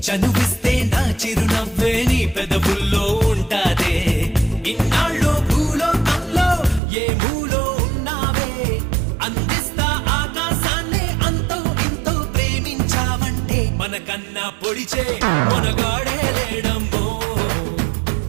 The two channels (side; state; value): left; drops out; at 6.8 s